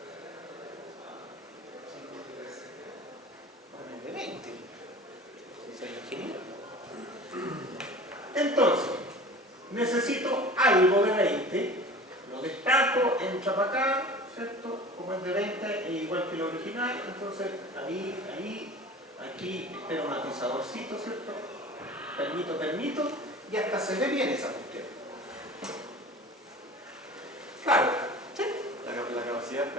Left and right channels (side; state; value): both; normal; correlation 0.40